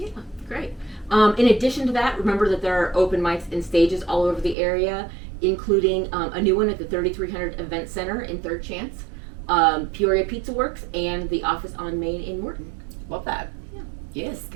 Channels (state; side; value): drops out; left; at 4.5 s